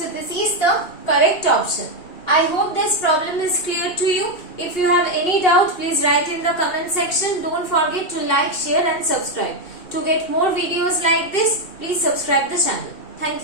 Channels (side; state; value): right; late; 2.7 ms